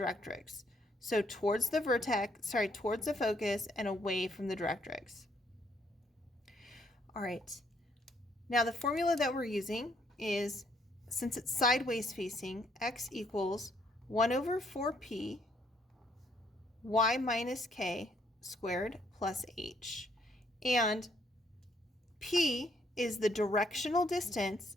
So towards the towards the focus and away from the directrix. All right. Now the formula that we're using is, since it's sideways facing, x equals 1/4p y minus k squared plus h. And p is the directional distance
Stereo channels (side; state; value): both; normal; correlation 0.69